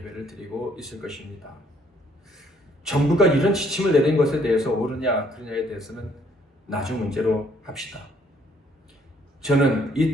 드리고 있을 것입니다. 정부가 이런 지침을 내린 것에 대해서 옳으냐 그르냐에 대해서는 나중 문제로 합시다. 저는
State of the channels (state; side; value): normal; both; correlation 0.65